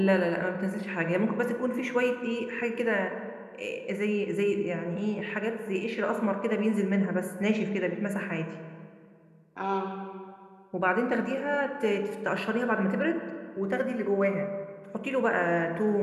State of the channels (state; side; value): identical; both; correlation 1.00